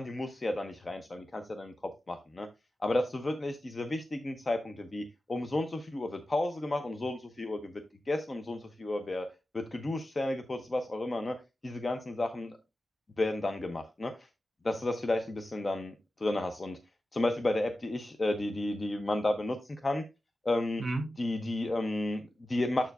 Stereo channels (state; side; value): normal; both; correlation 0.93